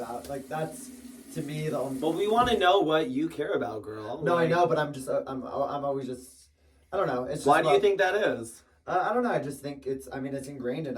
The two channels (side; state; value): both; identical; correlation 1.00